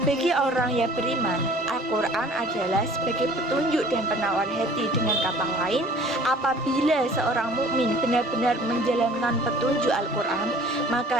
Bagi orang yang beriman, Al-Quran adalah sebagai petunjuk dan penawar hati. Dengan kata lain, apabila seorang mukmin benar-benar menjalankan petunjuk Al-Quran,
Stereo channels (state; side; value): normal; both; correlation 0.49